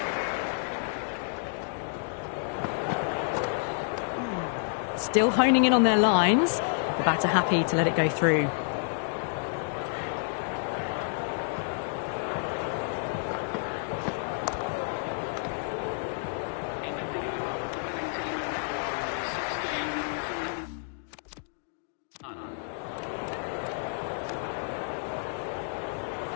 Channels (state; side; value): silent; right; digital silence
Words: Still honing in on their lines. The batter happy to let it go through.